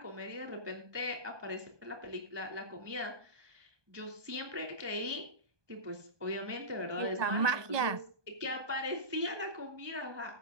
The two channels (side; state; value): left; late; 1.2 ms